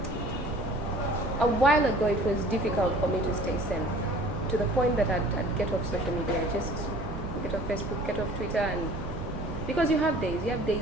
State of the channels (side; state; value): both; normal; correlation 0.48